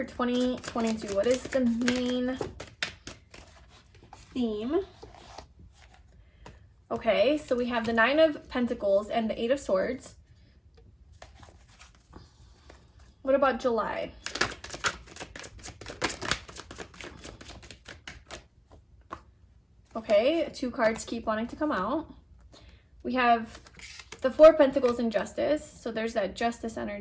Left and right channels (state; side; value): identical; both; correlation 1.00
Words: 2022? What is the main theme? Okay, so we have the 9 of Pentacles and the 8 of Swords. What about July? Okay, 2 cards keep wanting to come out. We have the 4 of Pentacles and Justice. So there's that justice